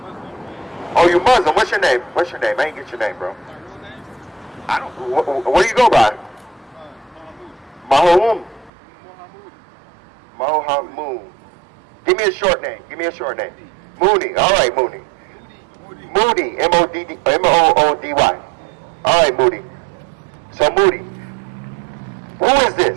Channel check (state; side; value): drops out; left; at 8.7 s